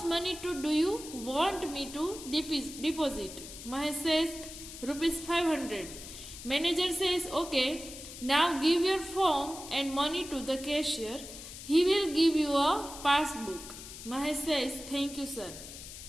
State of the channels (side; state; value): left; noise; hiss, 13 dB below the sound